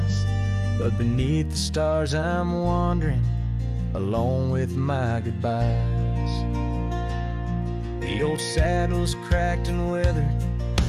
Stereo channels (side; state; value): both; identical; correlation 1.00